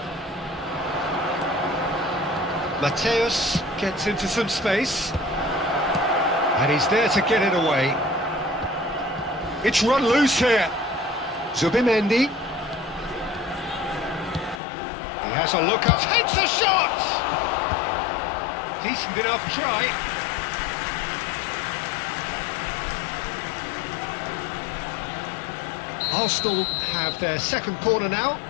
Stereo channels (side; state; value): right; drops out; at 14.6 s